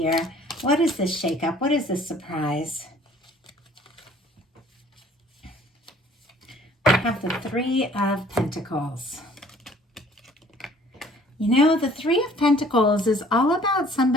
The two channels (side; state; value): both; normal; correlation 0.55